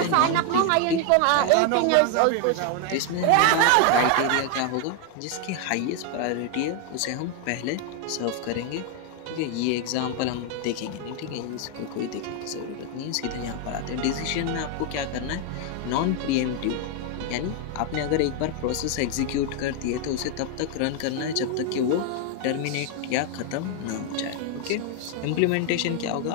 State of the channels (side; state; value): both; different; correlation 0.01